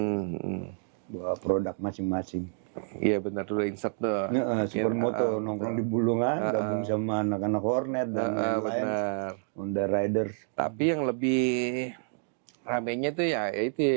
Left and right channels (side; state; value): left; silent; digital silence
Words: Bawa produk masing-masing. Iya benar dulu insert tuh. Supermoto nongkrong di Bulungan, gabung sama anak-anak Hornet dan lain-lain. Honda Riders. Tapi yang lebih ramenya tuh ya